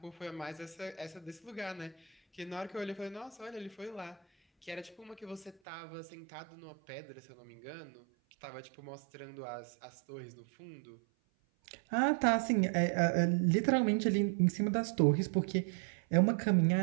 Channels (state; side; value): drops out; left; at 5.6 s